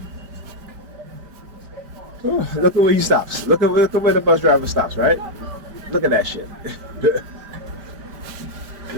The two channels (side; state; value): left; late; 5.1 ms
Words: Oh, look at where he stops. Look at where the bus driver stops, right? Look at that shit.